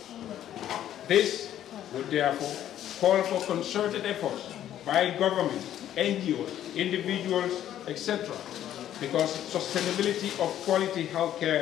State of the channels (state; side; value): quieter; right; 11.4 dB